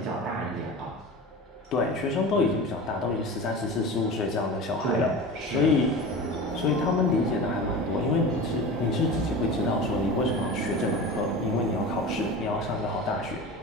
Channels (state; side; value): normal; both; correlation 0.32